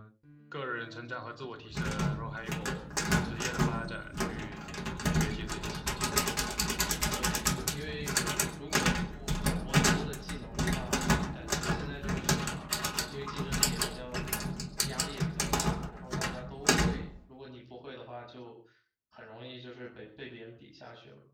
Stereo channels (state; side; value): identical; both; correlation 1.00